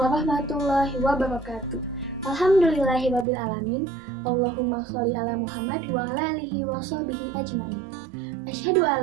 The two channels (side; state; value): left; drops out; at 3.2 s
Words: wabarakatuh. Alhamdulillahirabbil alamin. Allahumma sholli ala Muhammad wa ala alihi wa sahbihi ajmain. Asyhadu